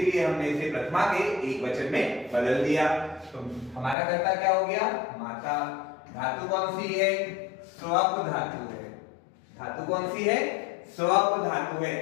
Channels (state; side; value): drops out; right; at 4.0 s